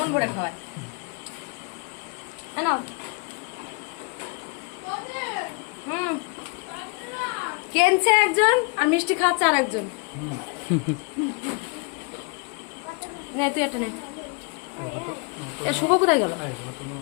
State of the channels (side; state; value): right; quieter; 31.9 dB